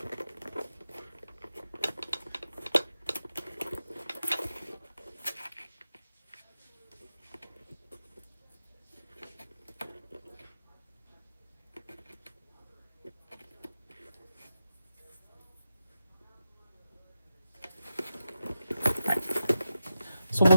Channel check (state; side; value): inverted; both; correlation -0.89